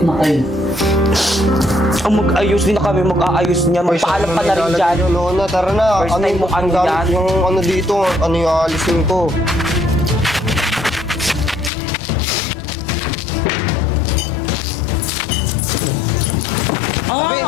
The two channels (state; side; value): drops out; right; at 11.7 s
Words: na kayo. ang mag-ayos din na kami, mag-aayos niya. Magpaalam ka na rin dyan. Lona, tara na. First time mo ano gamit yan? yung ano dito, ano yung aalisin ko.